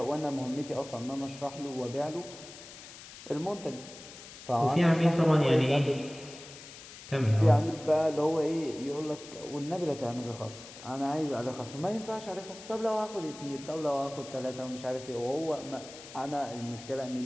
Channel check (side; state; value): left; noise; hiss, 16 dB below the sound